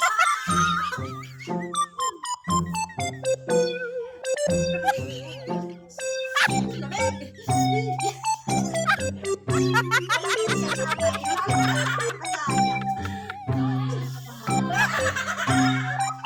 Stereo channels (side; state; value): both; identical; correlation 1.00